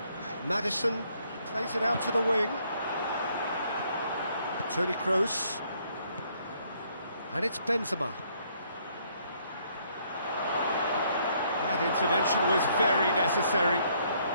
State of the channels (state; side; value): inverted; both; correlation -0.67